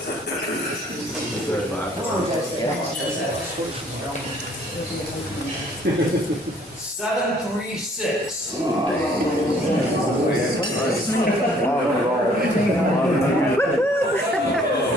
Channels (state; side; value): normal; both; correlation 0.60